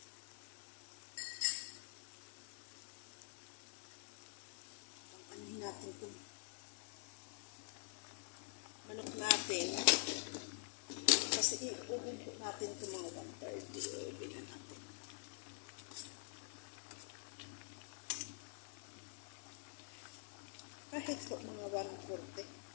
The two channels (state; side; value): silent; right; digital silence